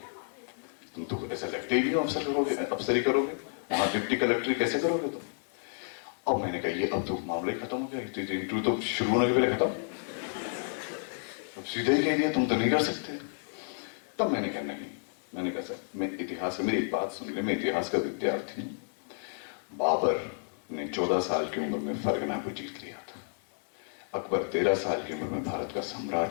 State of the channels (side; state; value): right; silent; digital silence